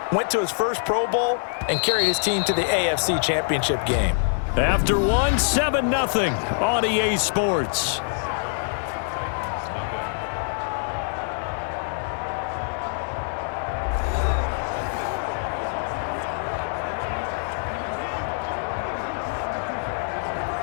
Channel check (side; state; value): right; silent; digital silence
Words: Went to his first Pro Bowl and carried his team to the AFC Championship game. After one, 7-0 on EA Sports.